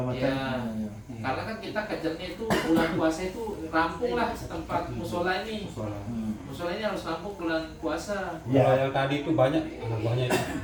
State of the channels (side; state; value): both; identical; correlation 1.00